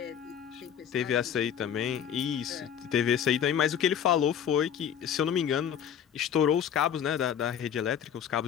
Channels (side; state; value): right; quieter; 8.9 dB